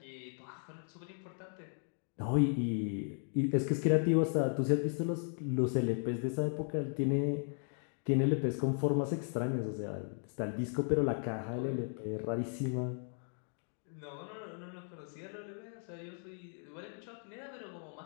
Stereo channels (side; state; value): right; silent; 54 dB below the other